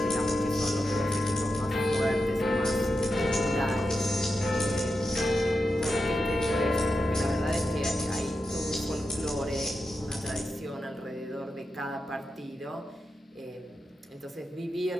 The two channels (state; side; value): normal; both; correlation 0.88